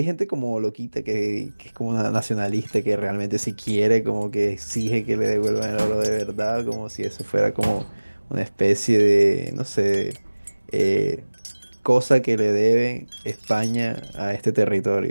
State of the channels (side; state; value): both; inverted; correlation -1.00